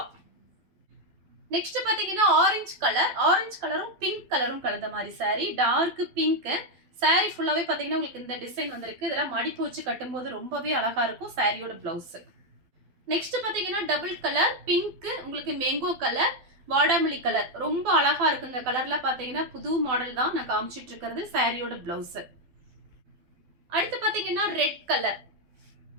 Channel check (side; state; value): left; late; 12 ms